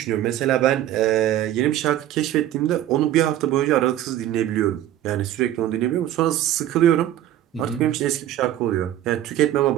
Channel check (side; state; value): left; quieter; 12.6 dB